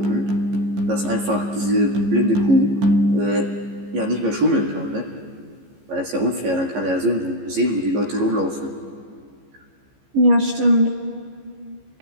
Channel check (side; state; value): left; late; 15 ms